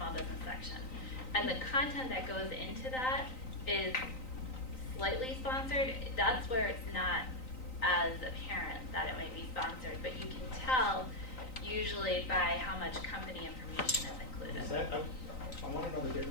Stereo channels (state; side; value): late; right; 3.9 ms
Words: business section. And the content that goes into that is slightly sponsored. That's where it's not as apparent that it might be sponsored, but you can tell usually by how much company information is included. Is that, I want to know the